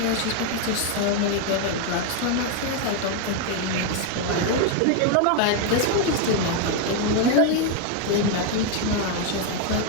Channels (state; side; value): different; both; correlation 0.01